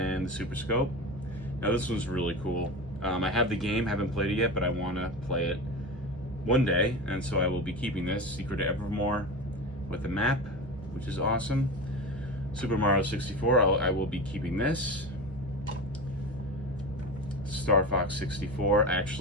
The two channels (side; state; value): both; normal; correlation 0.26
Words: the Super Scope. Now this one's really cool. I have the game, haven't played it yet, but I want to play it one day, and so I will be keeping this. Secret of Evermore with the map, which is awesome. Super Mario 64, I will be keeping this. Star Fox 64, I